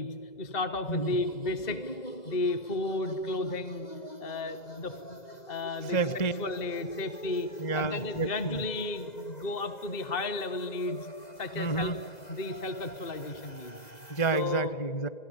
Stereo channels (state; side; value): late; right; 2.0 ms